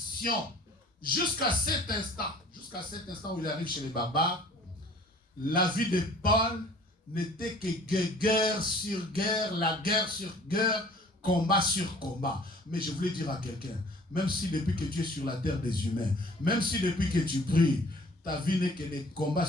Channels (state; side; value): normal; both; correlation 0.51